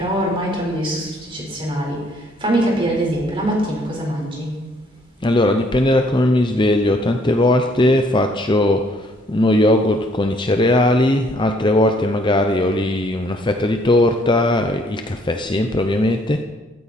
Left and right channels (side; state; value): both; normal; correlation 0.64